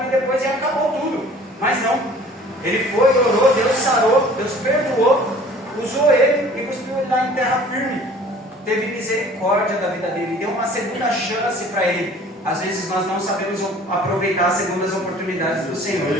depois e acabou tudo. Mas não, ele foi, orou, Deus sarou, Deus perdoou, usou ele e cuspiu ele lá em terra firme. Teve misericórdia da vida dele, deu uma segunda chance para ele. Às vezes nós não sabemos aproveitar as segundas oportunidades do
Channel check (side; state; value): both; normal; correlation 0.49